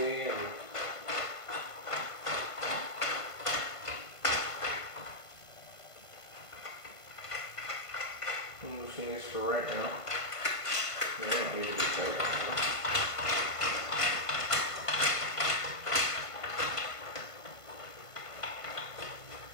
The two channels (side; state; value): right; late; 1.5 ms